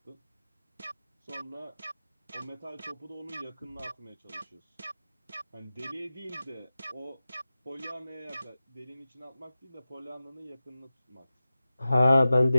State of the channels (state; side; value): inverted; both; correlation -0.95